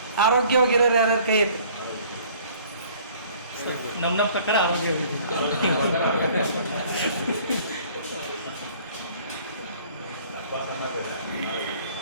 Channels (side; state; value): both; inverted; correlation -0.54